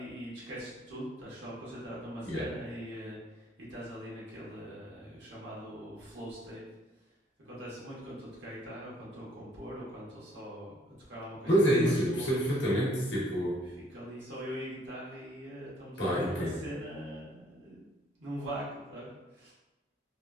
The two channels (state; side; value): normal; both; correlation 0.63